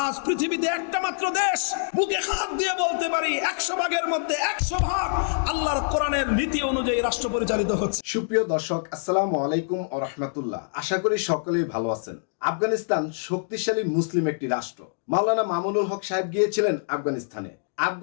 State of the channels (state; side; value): silent; right; digital silence